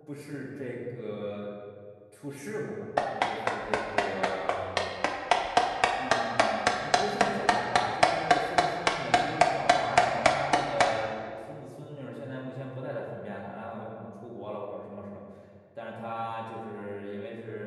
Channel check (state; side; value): identical; both; correlation 1.00